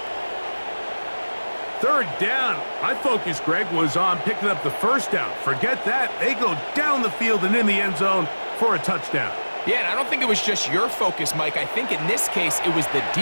Third down. My focus, Greg, was on picking up the first down. Forget that. They go down the field and in the end zone for a touchdown. Yeah, and I don't think it was just your focus, Mike. I think in this case, it was the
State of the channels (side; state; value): both; inverted; correlation -1.00